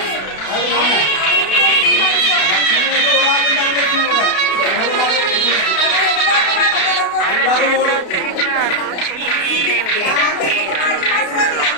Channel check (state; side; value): late; right; 32 ms